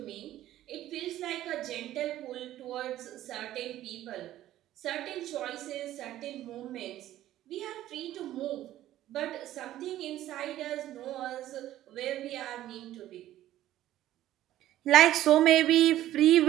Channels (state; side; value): quieter; left; 13.6 dB